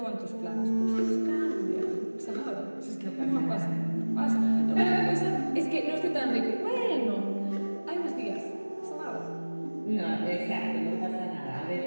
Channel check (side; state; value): both; inverted; correlation -1.00